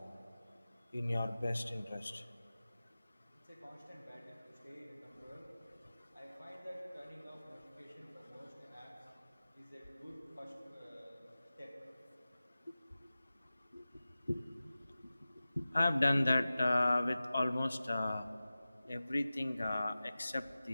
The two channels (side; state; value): both; inverted; correlation -0.96